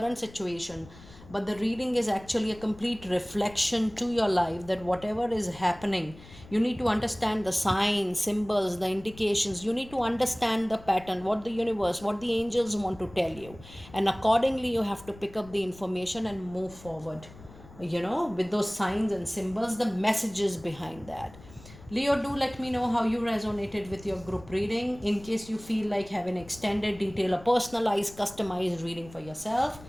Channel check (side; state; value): left; noise; rumble, 20 dB below the sound